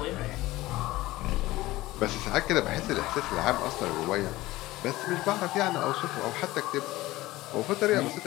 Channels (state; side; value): quieter; right; 18.0 dB